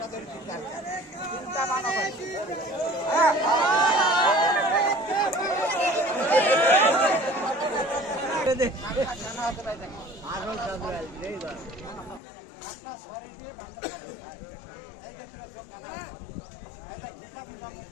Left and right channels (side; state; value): right; drops out; at 12.2 s